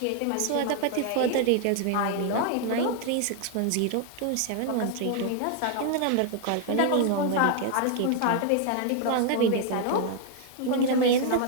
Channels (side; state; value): both; different; correlation 0.00